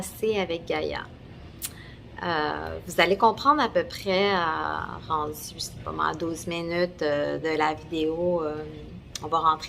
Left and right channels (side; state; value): both; identical; correlation 1.00